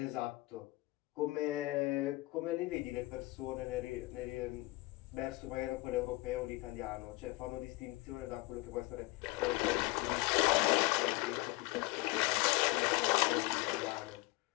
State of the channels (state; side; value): quieter; right; 22.0 dB